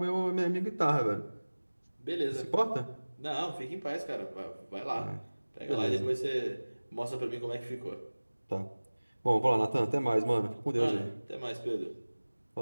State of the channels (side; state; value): both; inverted; correlation -1.00